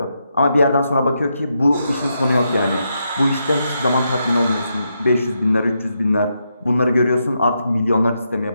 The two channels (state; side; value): inverted; both; correlation -0.83